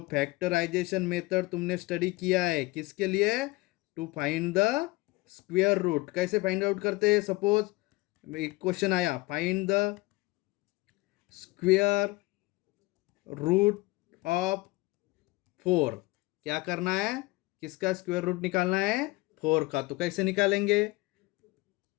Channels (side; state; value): right; quieter; 22.2 dB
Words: फैक्टराइजेशन मेथड तुमने स्टडी किया है, किसके लिए, to find the square root. कैसे फाइंड आउट करते हैं, सपोज एक क्वेश्चन आया, find the square root of 4, क्या करना है, किसका स्क्वायर रूट निकालना है, 4 का। तो कैसे निकालेंगे,